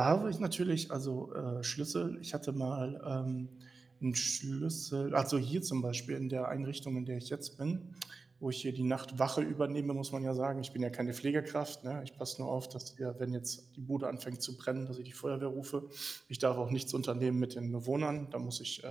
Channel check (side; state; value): left; quieter; 4.1 dB